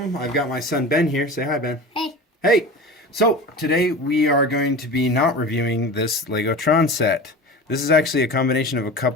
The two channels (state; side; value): normal; both; correlation 0.32